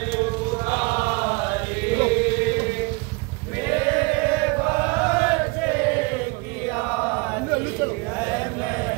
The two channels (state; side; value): quieter; left; 27.6 dB